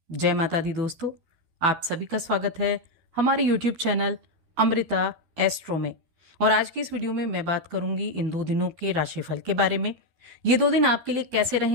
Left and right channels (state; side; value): late; left; 12 ms